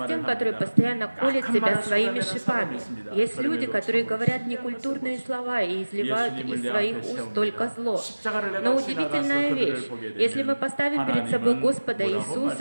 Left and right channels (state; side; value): inverted; both; correlation -1.00